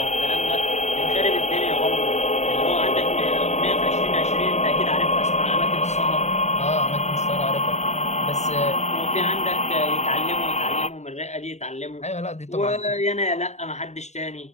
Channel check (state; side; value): late; right; 0.33 ms